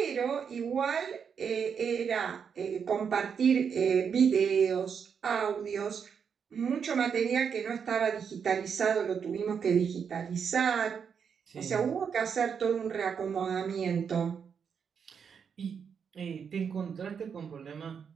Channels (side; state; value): left; quieter; 6.8 dB